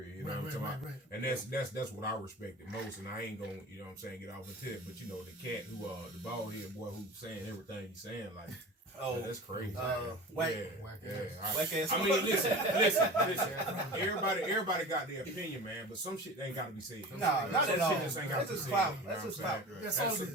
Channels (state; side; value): normal; both; correlation 0.35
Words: you know what I'm talking about? And that's what I respected most, and I ain't gonna, you know what I'm saying, get off into it. But you know, the cat who the bald head boy who's saying everything he's saying, like, that's crazy. Whack ass. I mean, listen. Everybody got their opinion, man, but some shit ain't gotta be said. Not at all. That's just clout. That's just clout. That's all it